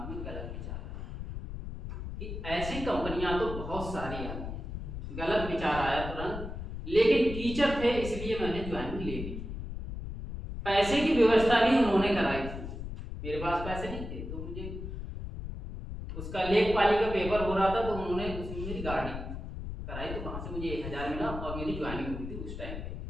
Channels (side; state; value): left; noise; rumble, 7 dB below the sound